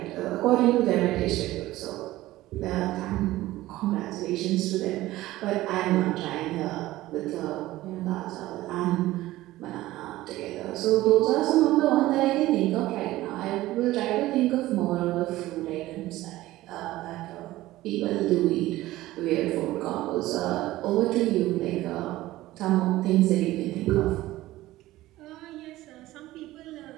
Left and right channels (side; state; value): left; quieter; 16.6 dB